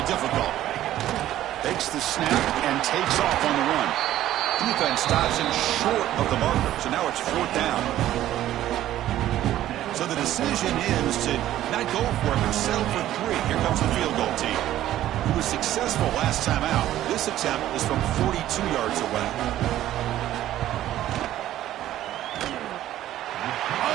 difficult. Takes the snap and takes off on the run. Defense stops him short of the marker, so now it's 4th down. So the decision is to not go for it, but settle for 3. Here comes the field goal team. He was successful last time out. This attempt is from 42 yards away.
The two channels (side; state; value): left; quieter; 13.2 dB